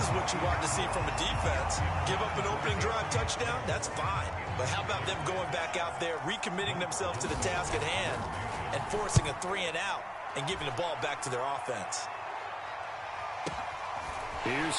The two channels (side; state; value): both; identical; correlation 1.00